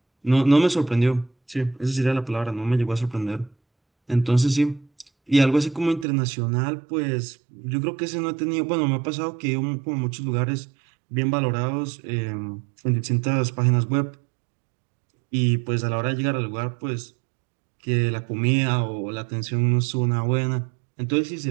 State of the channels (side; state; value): left; drops out; at 6.1 s